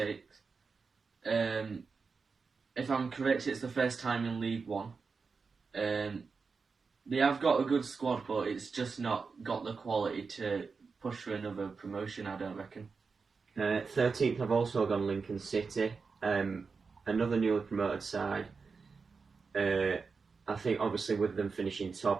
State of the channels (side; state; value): left; quieter; 4.9 dB